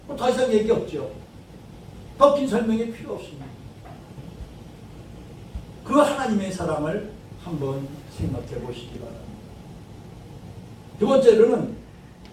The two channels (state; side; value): identical; both; correlation 1.00